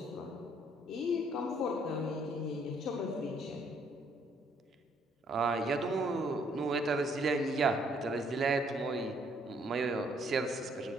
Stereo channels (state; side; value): normal; both; correlation 0.66